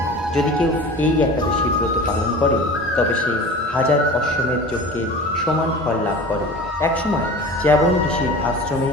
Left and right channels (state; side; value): normal; both; correlation 0.37